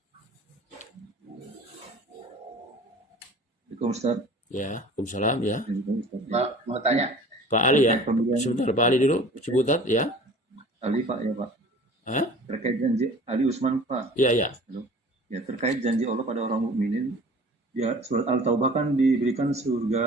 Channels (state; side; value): normal; both; correlation 0.45